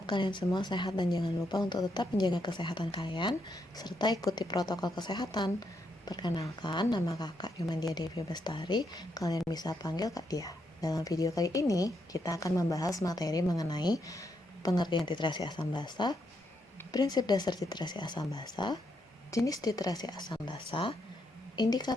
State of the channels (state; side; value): normal; both; correlation 0.79